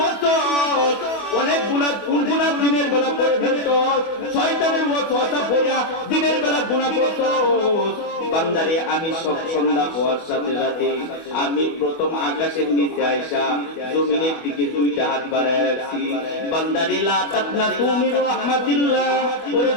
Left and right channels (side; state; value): right; late; 24 ms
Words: অনেক গুনাহ, কোন গুনাহ দিনের বেলা করে ফেলছস, শয়তানের ওয়াসওয়াসা পড়িয়া দিনের বেলা গুনাহ করছস। বান্দারে, আমি সব সন্ধ্যা হওয়ার সাথে সাথে আমি প্রথম আকাশের নিচে আইসা জমিনের দিকে 2টা হাত বাড়ায় রাখছি। বান্দারে, লা তাকনাতু মির রাহমাতিল্লাহ। ওরে